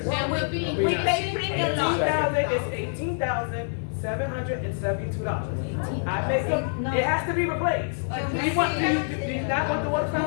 That would be. We pay premium lot. It's $18,772. I make it has to be replaced. Do you not want the water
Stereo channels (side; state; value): right; silent; digital silence